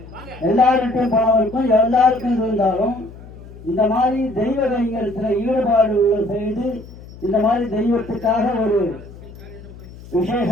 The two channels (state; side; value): noise; left; hum, 17 dB below the sound